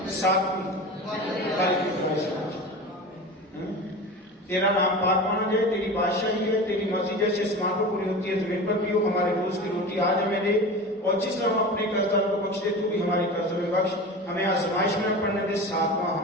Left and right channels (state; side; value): normal; both; correlation 0.31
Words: 7ویں، تیرا نام پاک مانا جائے، تیری بادشاہی ہے، تیری مرضی جیسے آسمان پر پوری ہوتی ہے زمین پر بھی ہو، ہمارے روز کی روٹی آج ہمیں دے، اور جس طرح ہم اپنے قرضداروں کو بخش دے تو بھی ہمارے قرضوں میں بخش، ہمیں آزمائش میں نہ پڑنے دے، 7واں